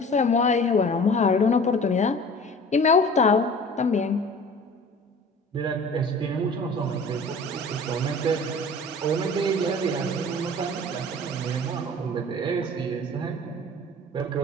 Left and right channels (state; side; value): normal; both; correlation 0.43